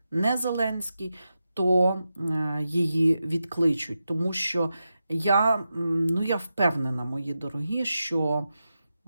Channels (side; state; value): both; inverted; correlation -0.90